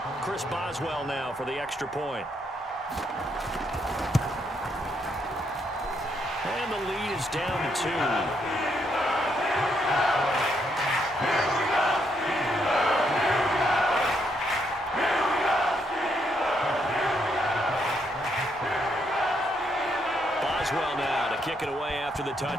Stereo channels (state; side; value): normal; both; correlation 0.75